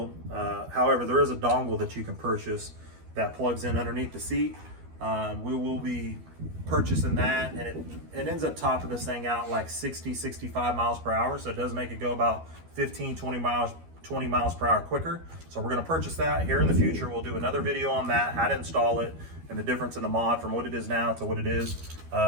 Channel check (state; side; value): late; left; 12 ms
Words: However, there is a dongle that you can purchase that plugs in underneath the seat. We will be purchasing that, and it ends up topping this thing out like 60-65 miles per hour, so it does make it go about 15-20 miles per hour quicker. So we're going to purchase that here in the future. We'll do another video on that, how to install it, and the difference in the mod from what it is now to what it is.